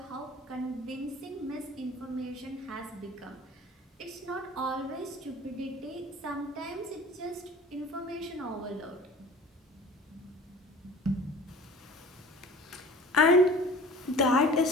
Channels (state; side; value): normal; both; correlation 0.44